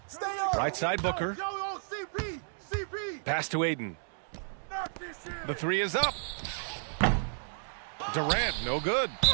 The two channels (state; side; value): silent; left; 56 dB below the other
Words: Right side Booker. Yo, CP. Pass to Aiden. The 3 is up. Durant, no good.